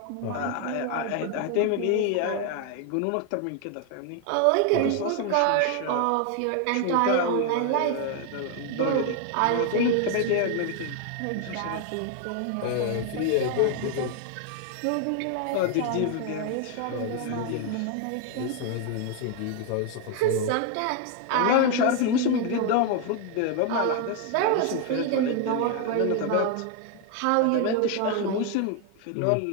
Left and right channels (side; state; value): both; different; correlation 0.01